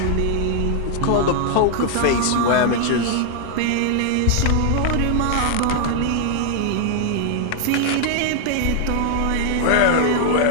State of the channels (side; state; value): both; different; correlation 0.00